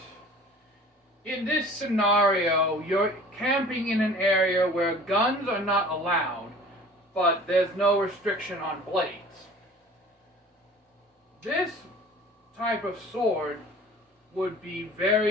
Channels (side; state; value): both; normal; correlation 0.45